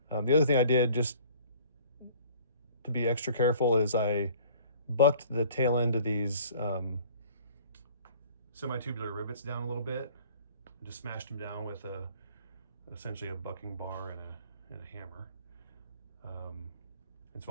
The other thing I did, just to be extra careful, is I bucked the tail end of these semi-tubular rivets down a little bit, and just smashed them down with essentially a bucking bar and a hammer. And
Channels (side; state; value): both; inverted; correlation -0.51